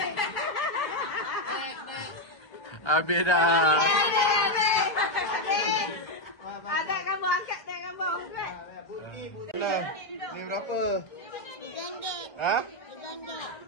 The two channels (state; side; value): late; right; 1.3 ms